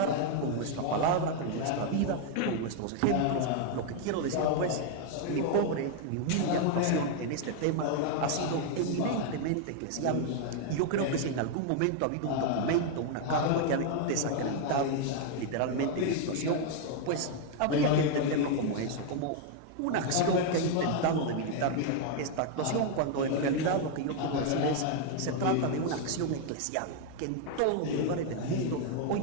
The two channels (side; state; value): both; different; correlation 0.00